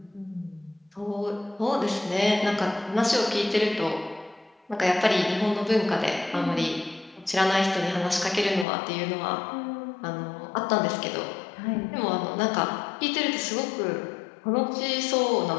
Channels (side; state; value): right; drops out; at 8.7 s